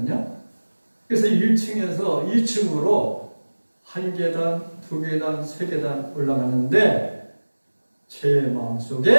그래서 1층에서 2층으로 1계단, 2계단, 3계단 올라가는데 제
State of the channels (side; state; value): both; inverted; correlation -1.00